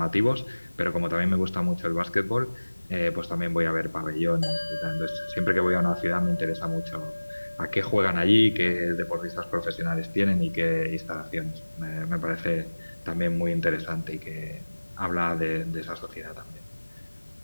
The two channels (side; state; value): both; inverted; correlation -1.00